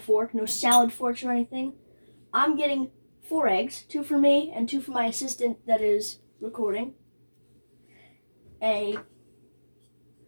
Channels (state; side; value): inverted; both; correlation -1.00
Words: no salad forks or anything. I'm getting 4 eggs, 2 for me and 2 for my assistant that is recording. A